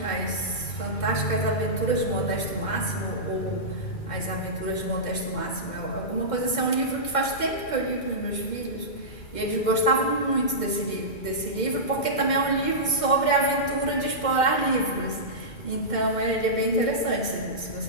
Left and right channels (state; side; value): late; right; 2.1 ms